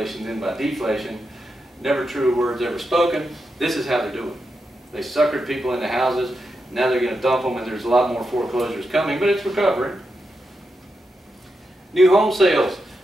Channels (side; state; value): both; normal; correlation 0.86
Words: then by deflation. Never true words ever spoken. This is how they're doing. They suckered people into houses. Now they're going to dump them, and there's a lot more foreclosures coming, but it's recovering. New home sales.